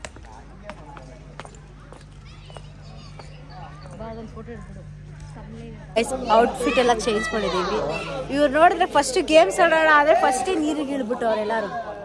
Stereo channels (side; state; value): both; identical; correlation 1.00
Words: ಔಟ್ಫಿಟ್ ಎಲ್ಲ ಚೇಂಜ್ ಮಾಡಿದ್ದೀವಿ. ಇವ್ರು ನೋಡಿದ್ರೆ ಫಸ್ಟ್ ಗೇಮ್ಸ್ ಆಡೋಣ ಆದರೆ ಫಸ್ಟೇ ನೀರಿಗೆ ಇಳ್ಬಿಟ್ಟು ಅವರೆಲ್ಲರೂ.